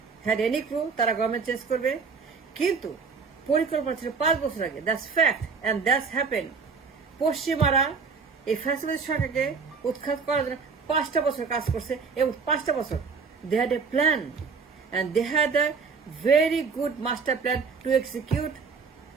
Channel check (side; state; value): left; quieter; 5.2 dB